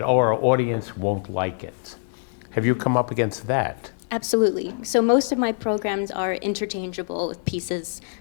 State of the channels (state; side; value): silent; right; digital silence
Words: our audience won't like it. Have you come up against that? Absolutely. So most of my programs are interchangeable with pieces